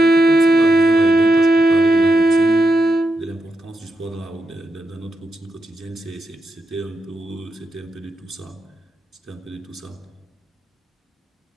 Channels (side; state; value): both; normal; correlation 0.86